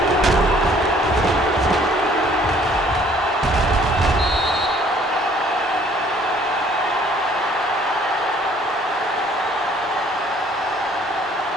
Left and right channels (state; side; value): normal; both; correlation 0.58